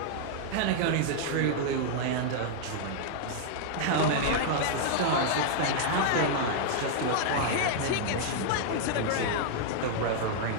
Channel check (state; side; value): different; both; correlation -0.01